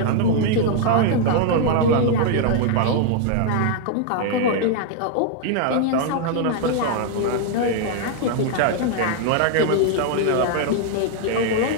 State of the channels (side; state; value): both; different; correlation 0.00